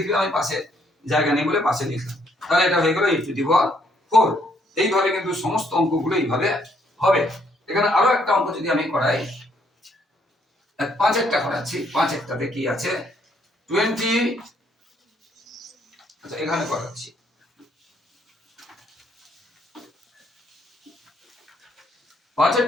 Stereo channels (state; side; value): normal; both; correlation 0.69